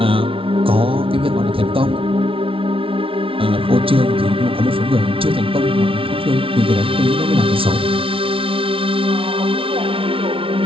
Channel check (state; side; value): late; left; 0.26 ms